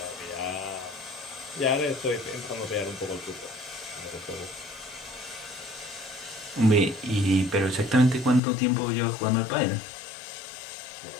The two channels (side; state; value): right; drops out; at 8.4 s